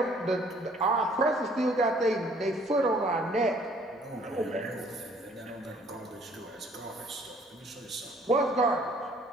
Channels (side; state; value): both; normal; correlation 0.59